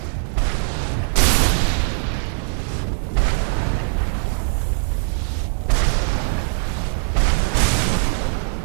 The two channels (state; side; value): silent; left; digital silence